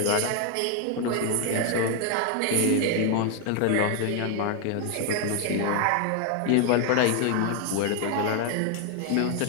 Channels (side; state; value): both; different; correlation 0.01